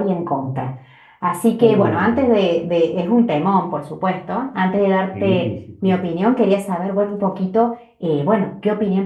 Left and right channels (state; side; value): identical; both; correlation 1.00